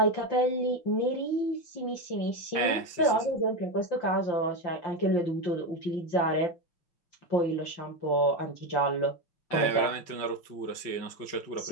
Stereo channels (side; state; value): right; late; 5.7 ms